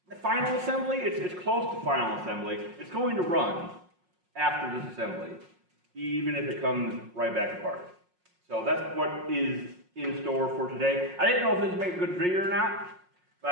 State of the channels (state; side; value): late; left; 5.5 ms